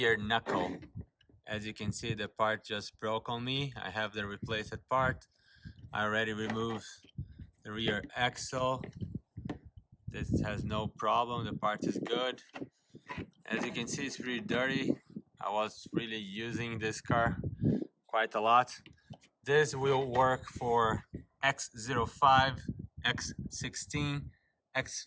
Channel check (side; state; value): both; identical; correlation 1.00